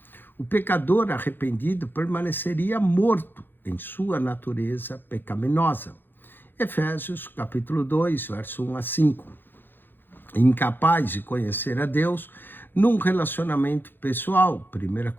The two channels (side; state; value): right; late; 0.097 ms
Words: o pecador arrependido permaneceria morto em sua natureza pecaminosa. Efésios capítulo 2, verso 1 a 5. Incapaz de conhecer a Deus num relacionamento pessoal. 1